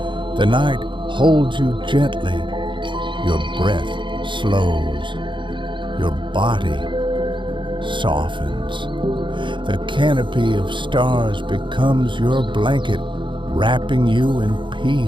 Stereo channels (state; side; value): late; left; 0.23 ms